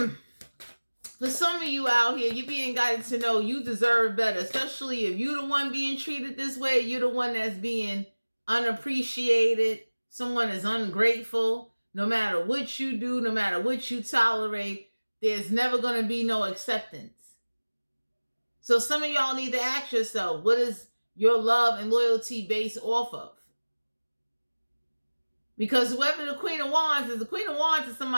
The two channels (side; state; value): both; inverted; correlation -1.00